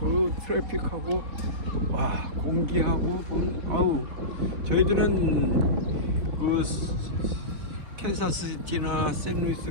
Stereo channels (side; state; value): left; late; 4.1 ms